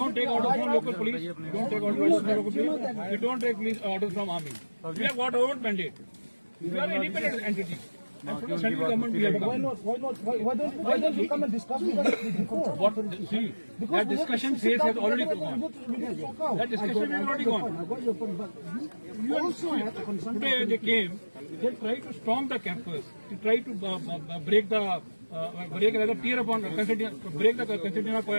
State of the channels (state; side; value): inverted; both; correlation -1.00